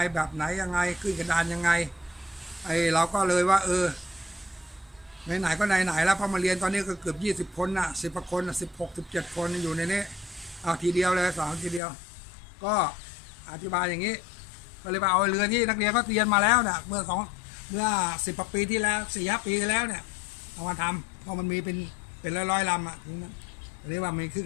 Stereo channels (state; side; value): drops out; right; at 11.8 s